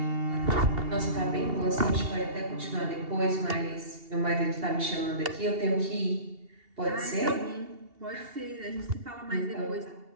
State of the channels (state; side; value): late; left; 2.8 ms